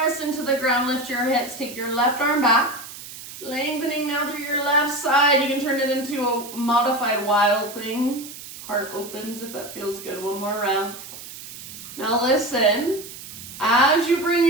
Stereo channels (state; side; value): noise; right; hiss, 13 dB below the sound